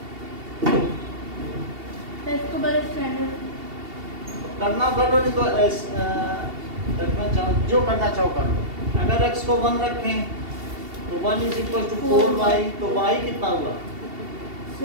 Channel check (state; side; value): late; left; 2.7 ms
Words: इसको बड़े स्टैंडर्ड करना कर लो, नहीं तो रखना चाहो, जो करना चाहो कर लो। अगर x को 1 रखें तो 1 इज इक्वल टू 4y, तो y कितना हुआ?